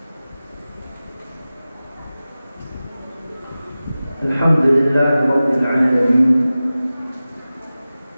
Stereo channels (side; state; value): both; inverted; correlation -0.96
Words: Alhamdulillah rabbil alamin.